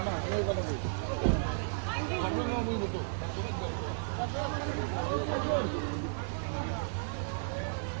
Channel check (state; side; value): silent; left; digital silence